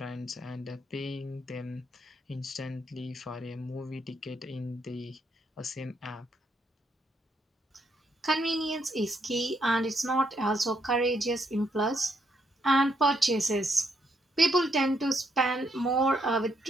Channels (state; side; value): normal; both; correlation 0.75